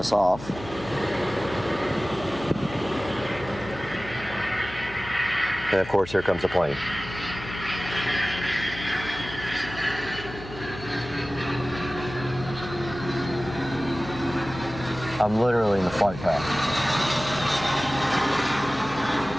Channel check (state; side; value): noise; left; hum, 14 dB below the sound